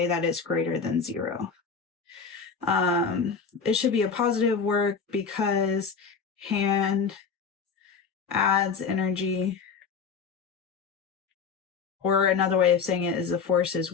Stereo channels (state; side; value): quieter; right; 5.7 dB